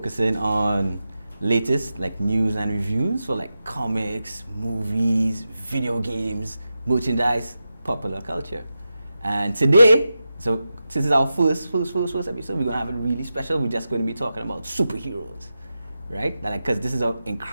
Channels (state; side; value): inverted; both; correlation -0.91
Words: on latest news and reviews for comics, movies, video games, merchandise, popular culture. And today, so since it's our first episode, we're going to have it really special. We're just going to be talking about superheroes, right? Because this is an